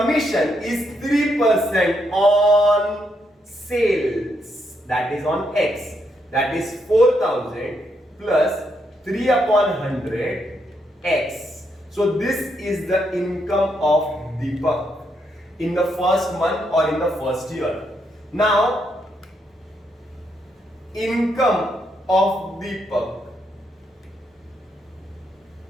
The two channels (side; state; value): both; normal; correlation 0.78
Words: is 3% on sales, that is on X, that is 4,000 plus 3 upon 100 X. So this is the income of Deepak in the first month or in the first year. Now, income of Deepak